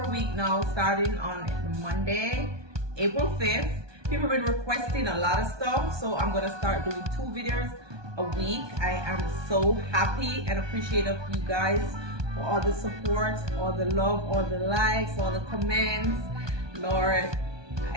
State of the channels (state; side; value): late; left; 1.2 ms